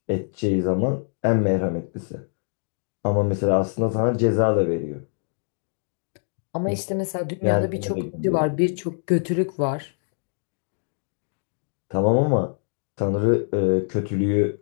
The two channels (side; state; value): right; silent; digital silence